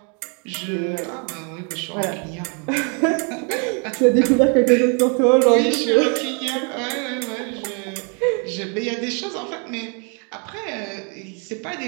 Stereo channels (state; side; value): quieter; left; 36.6 dB